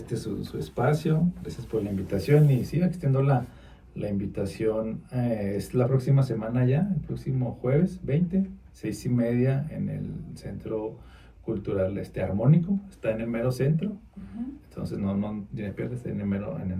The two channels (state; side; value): identical; both; correlation 1.00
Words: espacio. Gracias por la invitación, y sí, extiendo la invitación. Es la próxima semana ya, el próximo jueves 20, 6:30, en el Centro Cultural Armónico. Está en el mero centro. Entonces no tiene pierde, está en el